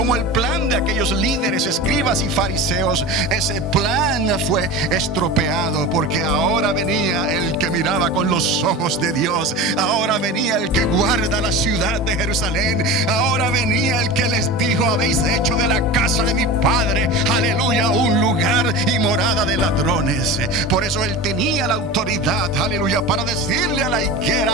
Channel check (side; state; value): both; normal; correlation 0.30